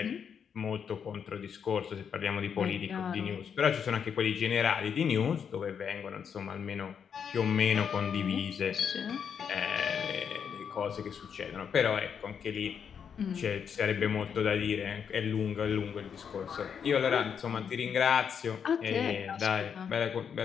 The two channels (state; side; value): quieter; right; 7.3 dB